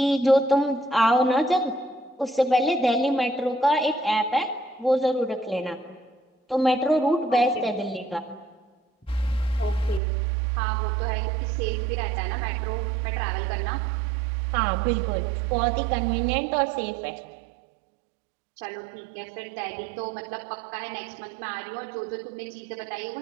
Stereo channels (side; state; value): left; drops out; at 10.0 s